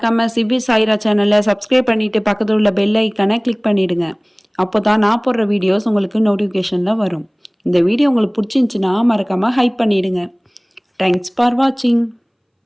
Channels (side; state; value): both; identical; correlation 1.00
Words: சிவி சாய்ரா சேனலை சப்ஸ்கிரைப் பண்ணிவிட்டு பக்கத்தில் உள்ள பெல் ஐக்கானை கிளிக் பண்ணிவிடுங்க. அப்போ தான் நான் போடுற வீடியோஸ் உங்களுக்கு நோட்டிஃபிகேஷனில் வரும். இந்த வீடியோ உங்களுக்கு பிடிச்சிருந்துச்சுன்னா மறக்காமல் ஹைப் பண்ணிவிடுங்க. தேங்க்ஸ் ஃபார் வாட்சிங்.